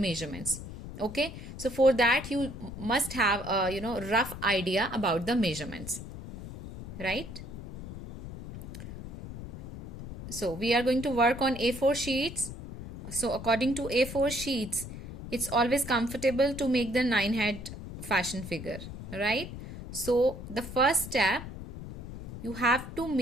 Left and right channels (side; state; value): left; noise; rumble, 10 dB below the sound